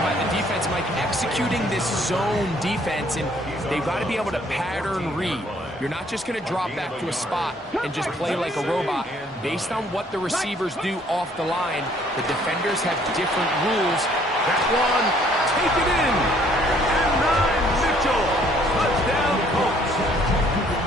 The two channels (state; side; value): normal; both; correlation 0.62